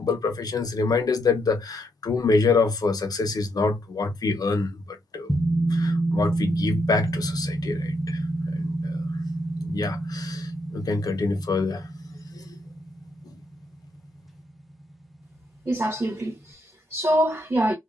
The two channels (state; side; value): normal; both; correlation 0.76